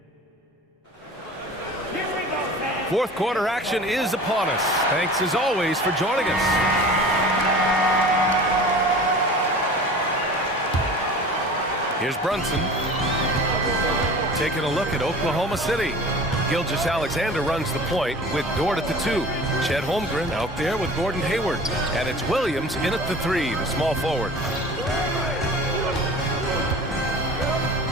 fourth quarter action is upon us. Thanks as always for joining us. Here's Brunson. Taking a look at Oklahoma City. Gilgeous-Alexander runs the point with Dort at the 2. Chet Holmgren out there with Gordon Hayward. And it's Williams in at the 3, the small forward.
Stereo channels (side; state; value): both; normal; correlation 0.40